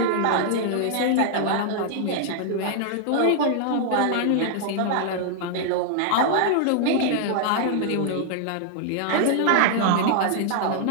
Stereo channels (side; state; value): both; different; correlation -0.01